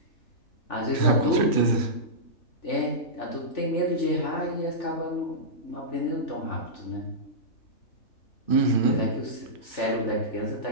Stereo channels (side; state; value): right; late; 3.4 ms